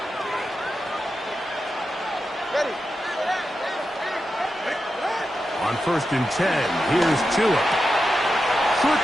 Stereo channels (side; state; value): both; normal; correlation 0.89